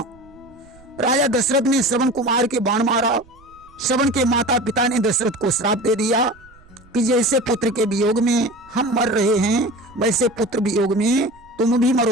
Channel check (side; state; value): right; noise; rumble, 27 dB below the sound